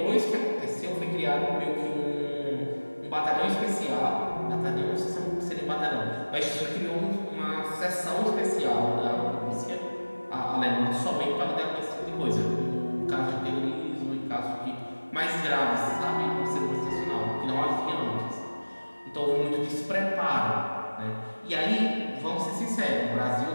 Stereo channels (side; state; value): both; inverted; correlation -1.00